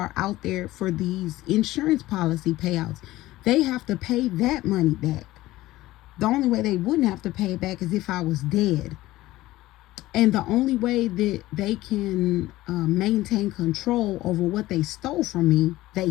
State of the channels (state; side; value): quieter; right; 17.0 dB